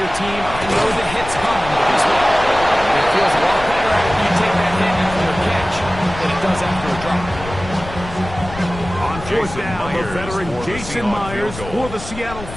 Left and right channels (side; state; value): left; noise; rumble, 12 dB below the sound